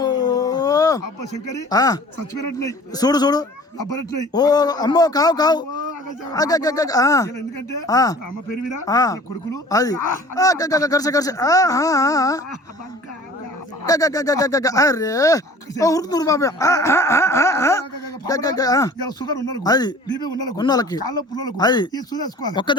అబ్బ శంకరి ఆ, సచ్చిపోయినట్టున్నాయి చూడు చూడు అబ్బనట్టున్నాయి ఓ అమ్మో కావు కావు ఎందుకంటే ఆ. అమ్మ పేరు మీద ఆ. కొడుకులు అది కరిసే కరిసే అరే ఉరుకుతురు బాబా షుగర్ ఉన్నాడు అది. బీపీ ఉన్నాడు ఉన్నోళ్ళకి. కాళ్ళ పుల్లలకు అది. ఈ సూదేసుకోవాలి ఒక్క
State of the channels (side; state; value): both; normal; correlation 0.46